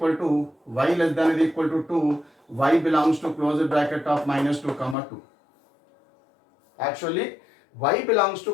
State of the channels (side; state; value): right; drops out; at 5.0 s